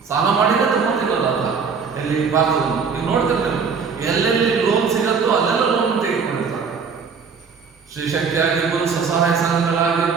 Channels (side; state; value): left; quieter; 5.7 dB